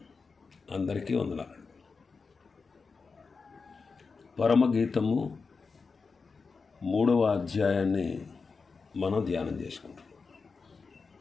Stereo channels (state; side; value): quieter; right; 4.7 dB